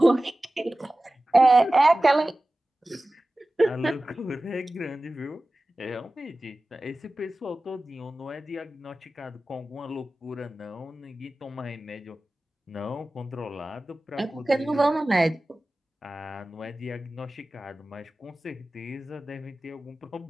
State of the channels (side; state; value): both; normal; correlation 0.96